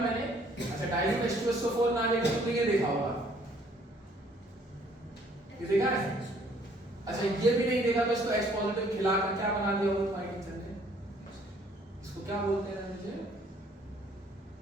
अच्छा, डाइल्यूट H2SO4 ना लेके तुमने ये देखा होगा, ये देखा है? अच्छा, ये भी नहीं देखा तो इसको H पॉजिटिव खिलाकर क्या बना दिया होगा तुम्हारे टीचर ने? इसको क्या बोलते हैं रणविजय?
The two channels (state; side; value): normal; both; correlation 0.61